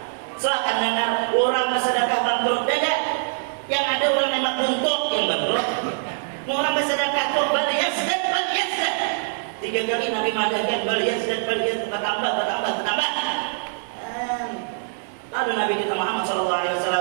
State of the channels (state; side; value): silent; left; 63 dB below the other